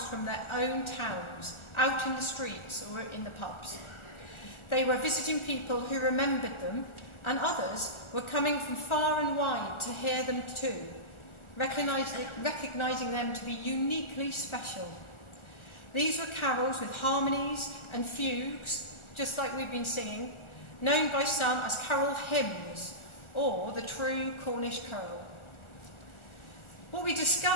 from their own towns, out in the streets or in the pubs. They were visiting people who remembered them, and others were coming from far and wide to hear them too, recognising them to be uniquely special. These were carols with harmonies and fugues, just like we've been singing, known by some as carol hymns, or the true Cornish carol. What we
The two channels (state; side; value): late; right; 1.4 ms